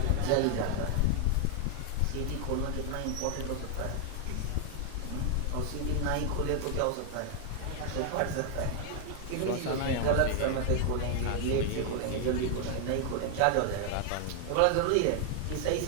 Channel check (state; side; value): different; both; correlation 0.00